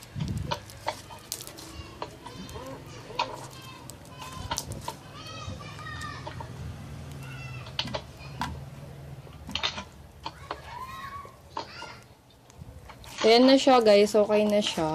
Ayan na siya guys, okay na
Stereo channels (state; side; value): identical; both; correlation 1.00